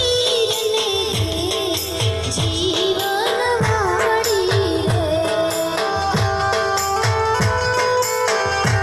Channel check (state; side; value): identical; both; correlation 1.00